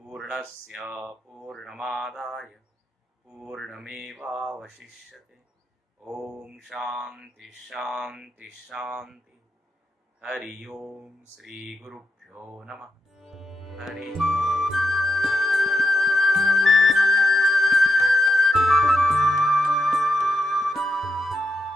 पूर्णमादाय पूर्णमेवावशिष्यते। ओम शांति शांति शांति। हरि ओम। श्री गुरुभ्यो नमः। हरि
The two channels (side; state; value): both; normal; correlation 0.84